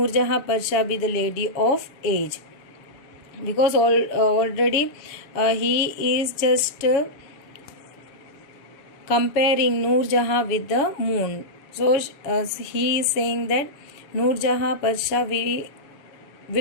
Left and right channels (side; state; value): right; late; 7.1 ms